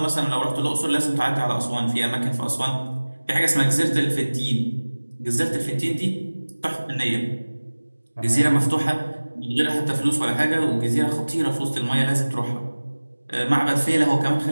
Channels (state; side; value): inverted; both; correlation -1.00